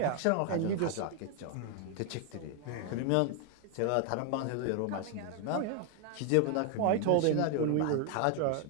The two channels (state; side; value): different; both; correlation 0.01